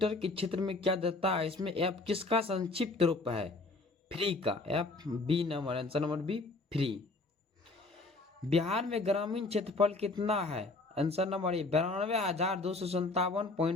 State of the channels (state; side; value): quieter; right; 3.3 dB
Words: के क्षेत्र में क्या देता है? इसमें एफ किसका संक्षिप्त रूप है? फ्री का। F B number, answer number B, free. Bihar में ग्रामीण क्षेत्रफल कितना है? आंसर नंबर ए,